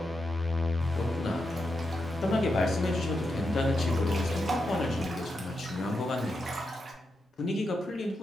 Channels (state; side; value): normal; both; correlation 0.86